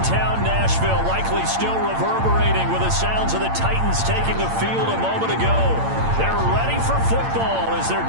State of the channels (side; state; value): left; late; 8.8 ms